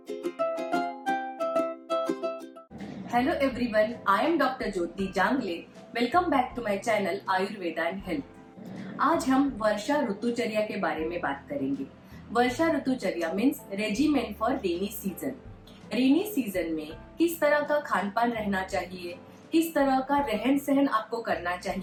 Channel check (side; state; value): both; identical; correlation 1.00